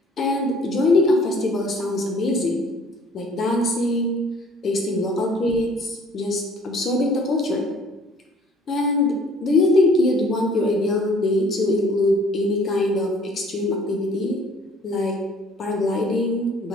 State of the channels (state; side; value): normal; both; correlation 0.55